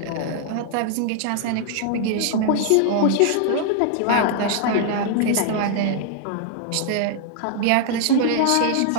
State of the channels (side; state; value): both; different; correlation -0.01